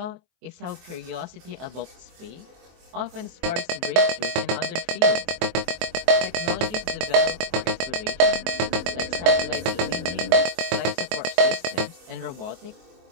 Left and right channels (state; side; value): late; left; 23 ms